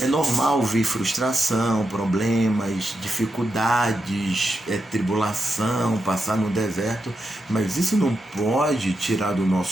normal vir frustração, problemas, dificuldades, tribulação, passar no deserto, mas isso não pode tirar do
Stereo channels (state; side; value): normal; both; correlation 0.86